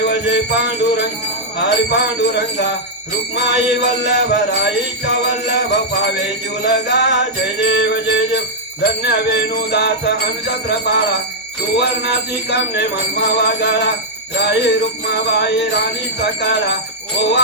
जय पांडुरंग हरि पांडुरंगा रुक्माई वल्लभ राईच्या वल्लभ पावे जुलगा जय देव धन्य वेणुदास अनुचत्र पाळा सुवर्णाची कामने मनमा वागाळा राई रुक्माबाई राणी सकाळा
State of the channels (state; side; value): normal; both; correlation -0.06